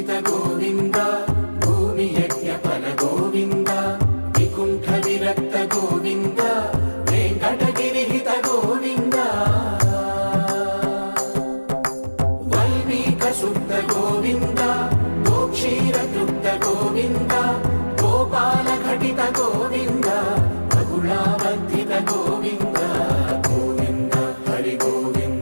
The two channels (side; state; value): both; inverted; correlation -1.00